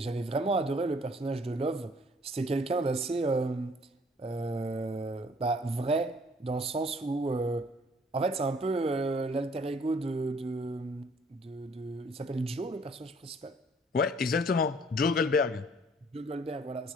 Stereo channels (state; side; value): normal; both; correlation 0.59